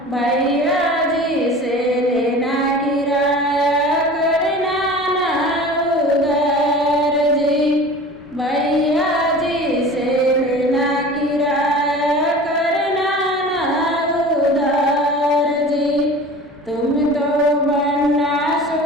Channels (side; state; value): both; normal; correlation 0.39